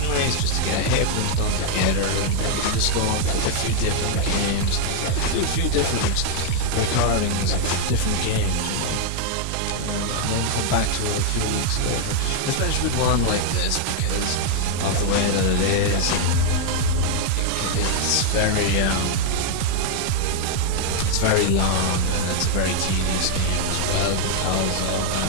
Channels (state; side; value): different; both; correlation 0.00